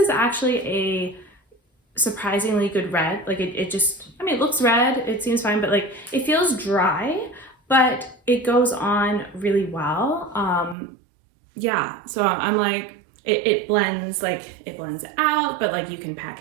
actually a surprisingly good red. Like it just, it looks red, it seems fine, but like it feels dry, but it goes on really well. Yeah, so I'm like, it blends out, but like you can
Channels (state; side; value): drops out; left; at 10.8 s